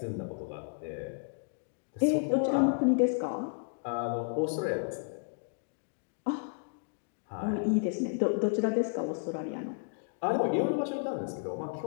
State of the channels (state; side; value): silent; right; digital silence